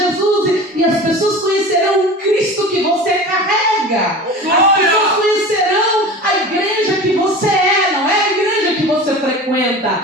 e as pessoas conhecerão o Cristo que você carrega. As pessoas conhecerão a igreja que você é, não é a igreja que você frequenta.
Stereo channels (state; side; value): normal; both; correlation 0.35